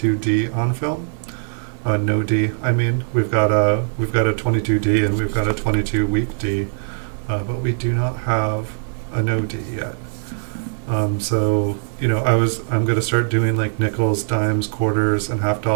on film. No D, I mean. We've got a 22D and we've got a 22 week D, but we do not have a no D yet. So, I'm going to start doing like nickels, dimes, quarters, and half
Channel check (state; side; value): silent; left; digital silence